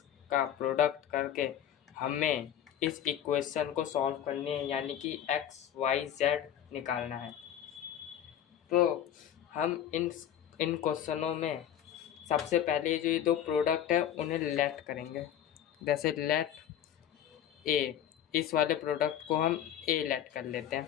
का प्रोडक्ट करके हमें इस इक्वेशन को सॉल्व करनी है, यानी कि एक्स वाई जेड निकालना है। तो हम इन क्वेश्चनों में सबसे पहले जो ये दो प्रोडक्ट है उन्हें लेट करेंगे। जैसे लेट ए, इस वाले प्रोडक्ट को हम ए लेट कर लेते हैं,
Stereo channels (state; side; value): quieter; right; 10.2 dB